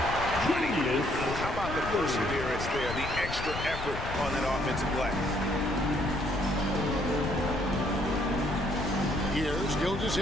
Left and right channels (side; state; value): left; noise; rumble, 7 dB below the sound